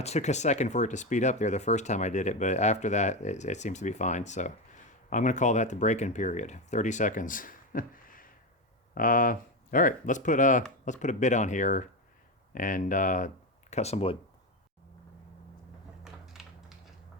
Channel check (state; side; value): normal; both; correlation 0.15